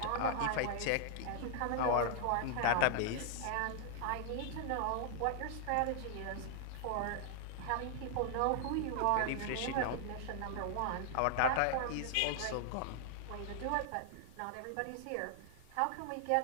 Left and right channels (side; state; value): both; different; correlation -0.01